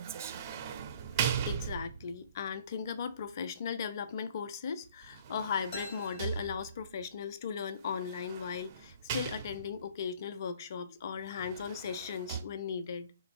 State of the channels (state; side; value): inverted; both; correlation -0.54